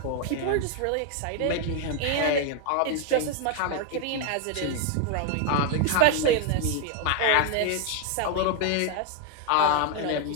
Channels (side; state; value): both; different; correlation 0.01